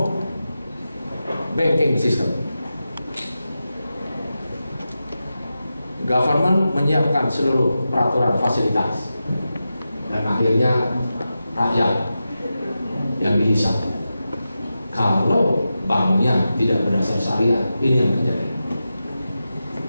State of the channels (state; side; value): inverted; both; correlation -0.91